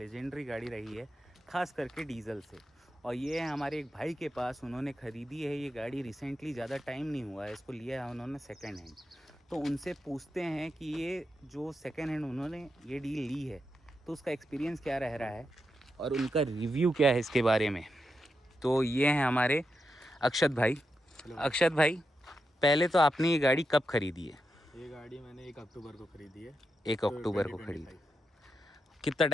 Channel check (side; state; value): both; normal; correlation 0.86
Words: गाड़ी रही है, ख़ास करके डीजल से। और ये है हमारे एक भाई के पास, उन्होंने ख़रीदी है ये गाड़ी रिसेंटली, ज़्यादा टाइम नहीं हुआ है, इसको लिया है उन्होंने सेकेंड हैंड। तो उनसे पूछते हैं कि ये जो सेकेंड हैंड उन्होंने ये डील ली है तो उसका एक्सपीरियंस क्या रह रहा है और उनका रिव्यू क्या है इसके बारे में। तो ये हैं हमारे अक्षत भाई। अक्षत भाई, पहले तो आपने ये गाड़ी कब खरीदी है? ये गाड़ी मैंने 1 अक्टूबर को खरीदी है। 1 तो अक्टूबर को 2025 खरीदी। कितना